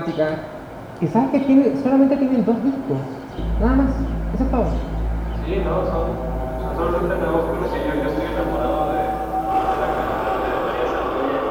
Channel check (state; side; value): identical; both; correlation 1.00